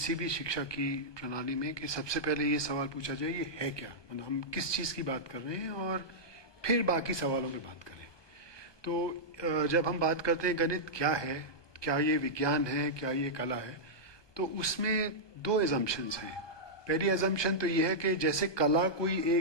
भी शिक्षा की प्रणाली में, कि सबसे पहले ये सवाल पूछा जाए ये है क्या, मतलब हम किस चीज़ की बात कर रहे हैं, और फिर बाकी सवालों पे बात करें। तो जब हम बात करते हैं गणित क्या है, क्या ये विज्ञान है, क्या ये कला है, तो उसमें दो एजम्पशंस हैं। पहली एजम्पशन तो ये है कि जैसे कला कोई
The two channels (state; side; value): late; right; 1.2 ms